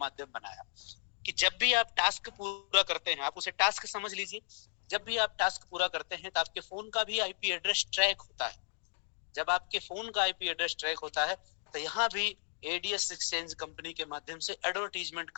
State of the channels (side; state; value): right; silent; digital silence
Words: बनाया। कि जब भी आप टास्क पूरा करते हैं, आप उसे टास्क समझ लीजिए, जब भी आप टास्क पूरा करते हैं तो आपके फोन का भी आईपी एड्रेस ट्रैक होता है। जब आपके फोन का आईपी एड्रेस ट्रैक होता है तो यहाँ भी एडीएस एक्सचेंज कंपनी के माध्यम से एडवर्टीजमेंट